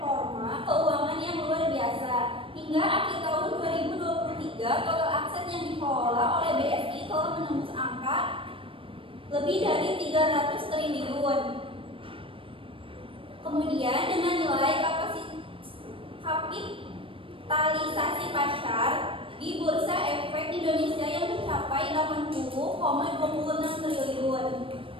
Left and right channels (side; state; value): left; late; 0.26 ms